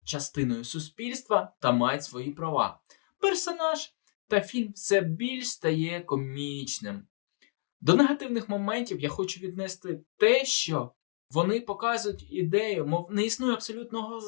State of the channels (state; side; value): silent; right; digital silence